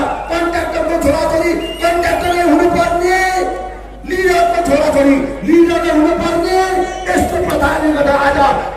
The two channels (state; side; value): identical; both; correlation 1.00